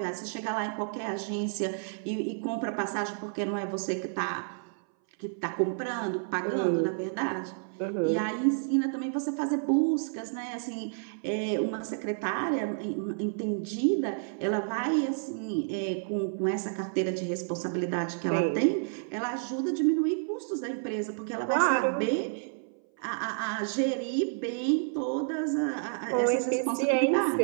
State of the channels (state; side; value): silent; left; 58 dB below the other